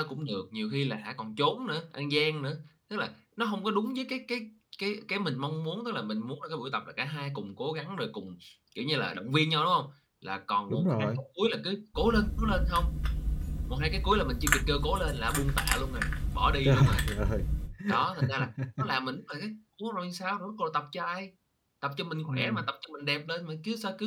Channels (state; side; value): identical; both; correlation 1.00